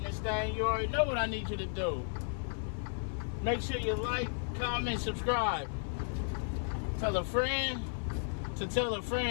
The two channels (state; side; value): silent; right; 55 dB below the other